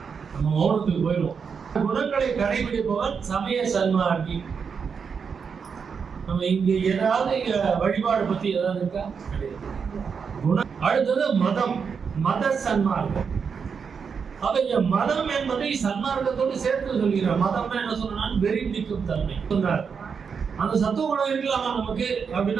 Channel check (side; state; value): left; quieter; 6.1 dB